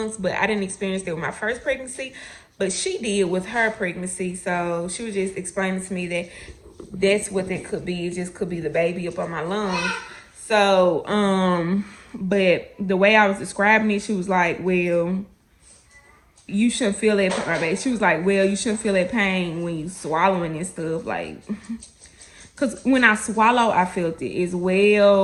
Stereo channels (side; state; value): both; identical; correlation 1.00